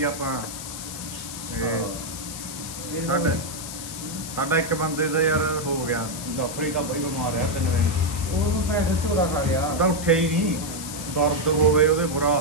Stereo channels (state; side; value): noise; left; hiss, 9 dB below the sound